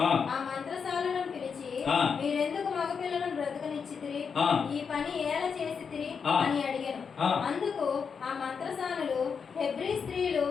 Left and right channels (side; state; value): right; quieter; 6.1 dB